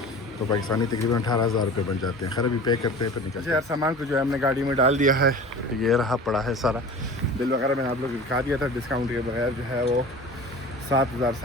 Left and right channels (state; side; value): normal; both; correlation 0.38